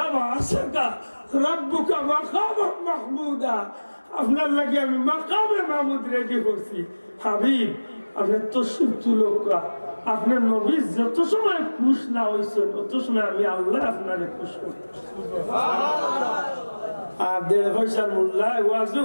আশাকা রাব্বুকা মাকামান মাহমুদা, আপনার লাগে আমি মাকামে মাহমুদ রেডি করছি। হাবিব আপনি তশরিফ তুলকা, আপনার নবী যত সময় খুশ না হয়েছেন তত সময় আমি আল্লাহ আপনারে খুশ করতে। আর 1.5 পয়সার মূল্যায় ওয়াজে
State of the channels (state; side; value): inverted; both; correlation -1.00